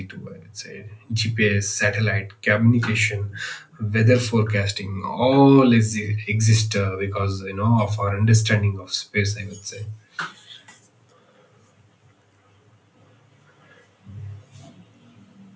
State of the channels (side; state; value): both; identical; correlation 1.00